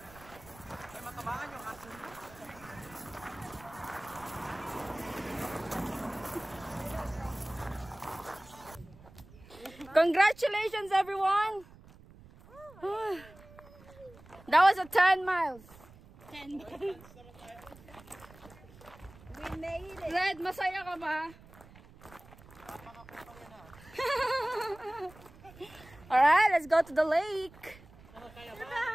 Ay, matabangan yung aso niyo. Congratulations, everyone! That was a 10 miles. 10 miles. We made it. Red, masaya ka ba? Alright, let's go to the lake.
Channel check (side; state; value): right; noise; rumble, 21 dB below the sound